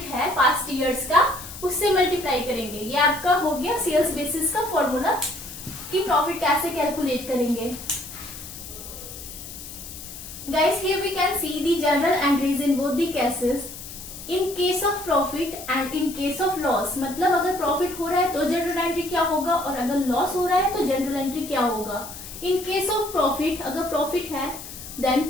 है पास्ट ईयर्स का उससे मल्टीप्लाई करेंगे। ये आपका हो गया सेल्स बेसिस का फॉर्मूला कि प्रॉफिट कैसे कैलकुलेट करेंगे। Guys here we can see the general entries in both the cases, in case of profit and in case of loss. मतलब अगर प्रॉफिट हो रहा है तो जनरल एंट्री क्या होगा और अगर लॉस हो रहा है तो जनरल एंट्री क्या होगा। इन केस ऑफ प्रॉफिट, अगर प्रॉफिट है then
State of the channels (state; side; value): noise; left; hiss, 12 dB below the sound